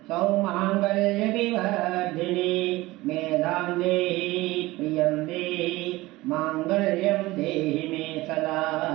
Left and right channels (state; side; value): quieter; left; 19.5 dB